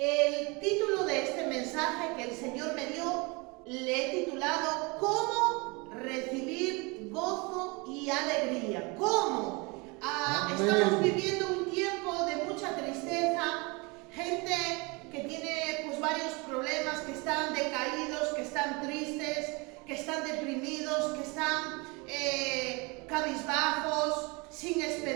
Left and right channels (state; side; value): quieter; left; 27.7 dB